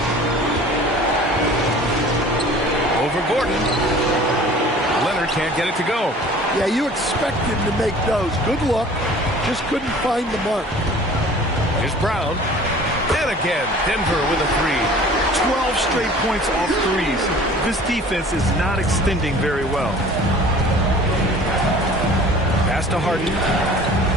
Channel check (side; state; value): both; normal; correlation 0.46